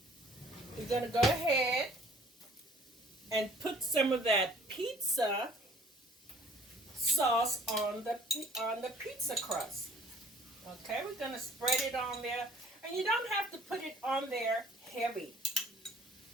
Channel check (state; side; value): normal; both; correlation 0.54